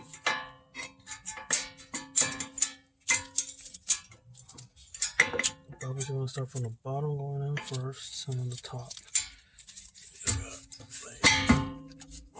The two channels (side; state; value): both; identical; correlation 1.00